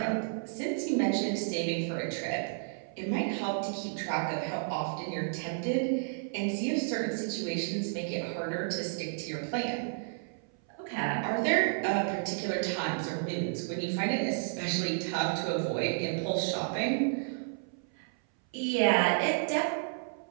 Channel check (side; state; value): left; silent; 57 dB below the other